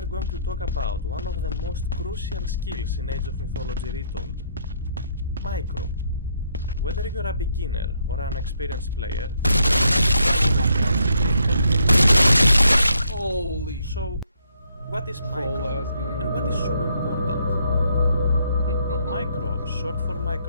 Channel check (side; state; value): both; inverted; correlation -0.72